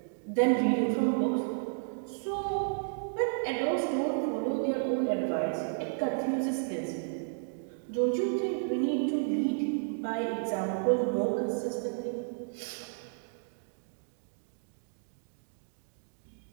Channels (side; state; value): left; silent; digital silence